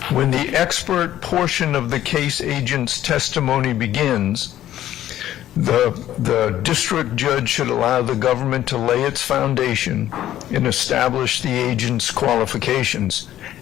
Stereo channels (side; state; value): right; quieter; 12.6 dB